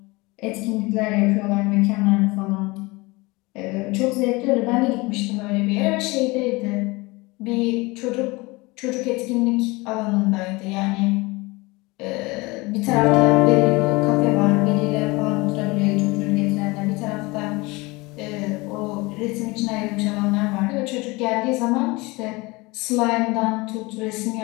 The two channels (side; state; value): right; quieter; 23.9 dB